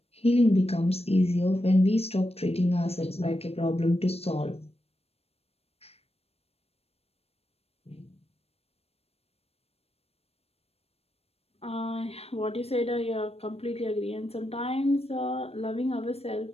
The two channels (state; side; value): late; right; 0.29 ms